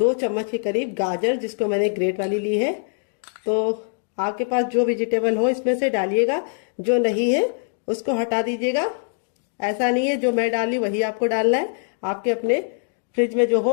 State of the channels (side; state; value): right; silent; digital silence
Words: चम्मच के करीब गाजर, जिसको मैंने ग्रेट वाली ली है। तो आपके पास जो वेजिटेबल हो इसमें से डालिएगा, जो नहीं है उसको हटा दीजिएगा। ऐसा नहीं है जो मैं डाली वही आपको डालना है, आपके अपने फ्रिज में जो हो